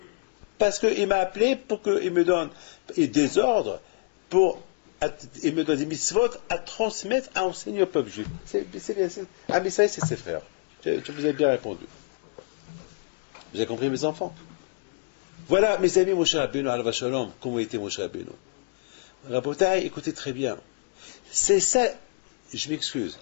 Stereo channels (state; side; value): quieter; right; 35.1 dB